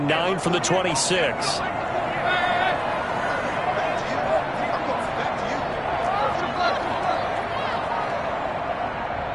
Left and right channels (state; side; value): identical; both; correlation 1.00